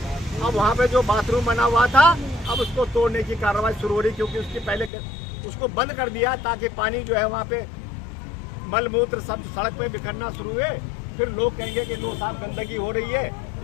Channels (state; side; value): drops out; right; at 4.9 s